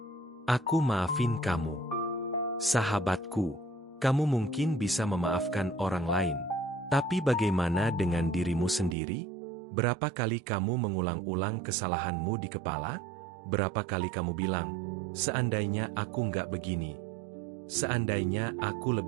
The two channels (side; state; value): left; drops out; at 9.0 s